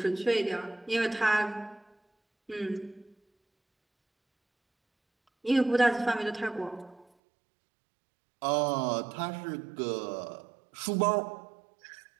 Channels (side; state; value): left; drops out; at 7.1 s